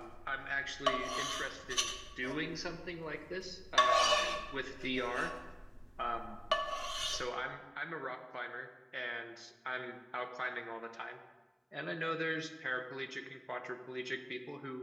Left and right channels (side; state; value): both; identical; correlation 1.00